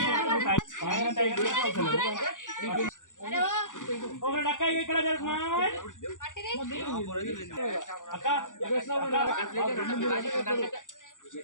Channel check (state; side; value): late; right; 0.87 ms